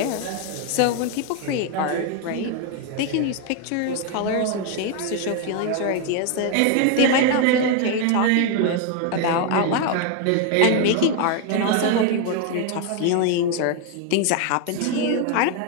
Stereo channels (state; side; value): different; both; correlation 0.01